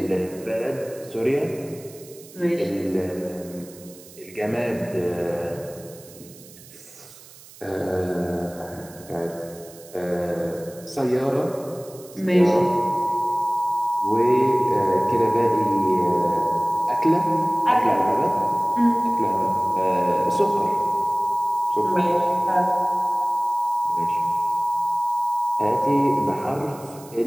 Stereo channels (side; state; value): right; noise; hiss, 21 dB below the sound